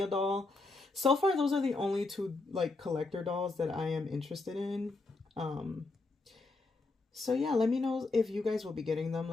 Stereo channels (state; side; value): quieter; right; 3.4 dB